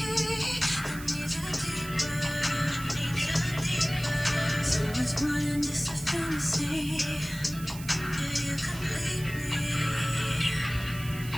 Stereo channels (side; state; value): right; noise; hiss, 14 dB below the sound